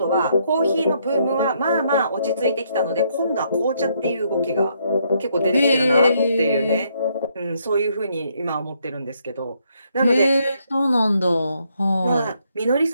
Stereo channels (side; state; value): both; inverted; correlation -0.73